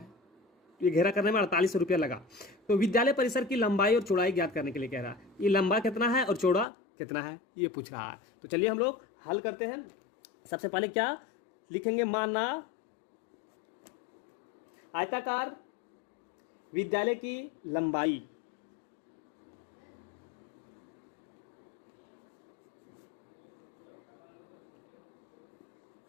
ये घेरा करने में 4800 रुपया लगा। तो विद्यालय परिसर की लंबाई और चौड़ाई ज्ञात करने के लिए कह रहा है, ये लंबा कितना है और चौड़ा कितना है ये पूछ रहा है। तो चलिए हम लोग हल करते हैं। सबसे पहले क्या लिखेंगे, माना आयताकार विद्यालय की लंबाई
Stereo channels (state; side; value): drops out; right; at 6.7 s